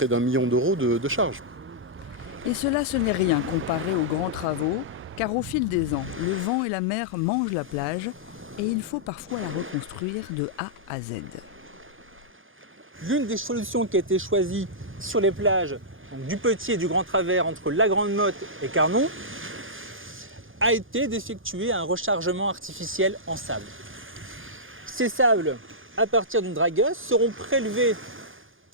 d'1 million d'euros de charges. Et cela, ce n'est rien comparé aux grands travaux, car au fil des ans, le vent et la mer mangent la plage et il faut parfois la reconstruire de A à Z. L'une des solutions qui a été choisie sur les plages donc du Petit et du Grand Travers entre la Grande Motte et Carnon a été d'effectuer un rechargement artificiel en sable. Ces sables, à partir d'une dragueuse, seront prélevés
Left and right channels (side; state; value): both; normal; correlation -0.12